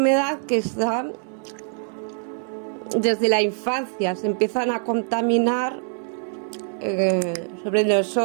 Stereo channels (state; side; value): silent; left; 55 dB below the other